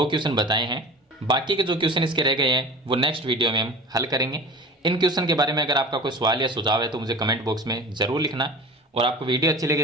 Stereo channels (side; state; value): both; normal; correlation 0.37